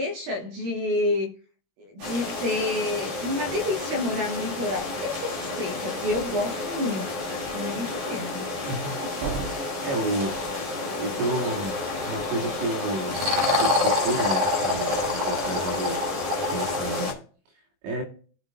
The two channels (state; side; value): late; left; 21 ms